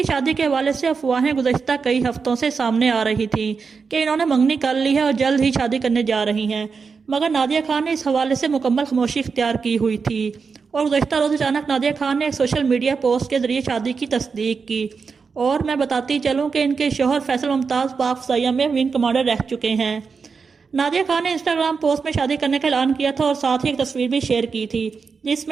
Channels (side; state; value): left; quieter; 5.3 dB